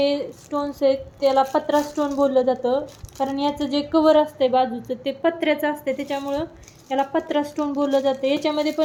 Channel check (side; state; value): both; identical; correlation 1.00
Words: स्टोन्स आहेत त्याला पत्रा स्टोन बोललं जातं, कारण याचं जे कवर असते बाजूचं ते पत्र्याचं असते, त्याच्यामुळं याला पत्रा स्टोन बोललं जातं. याच्यामध्ये